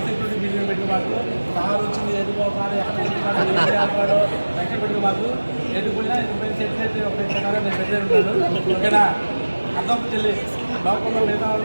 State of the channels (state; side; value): inverted; both; correlation -1.00